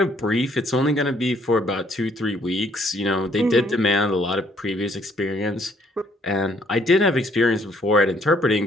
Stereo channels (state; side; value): normal; both; correlation 0.66